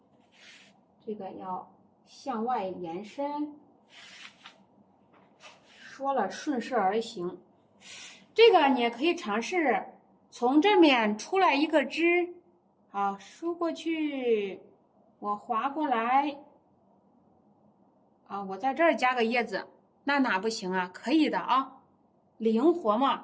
这个要向外延伸，说了顺势而行。这个你也可以尝试从这面出来一个枝，好，梳过去，我划过来，啊，我在这儿加个叶子，那哪不行啊？可以的啊，灵活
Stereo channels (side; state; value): both; identical; correlation 1.00